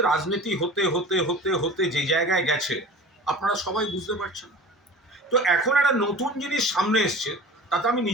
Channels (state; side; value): normal; both; correlation 0.39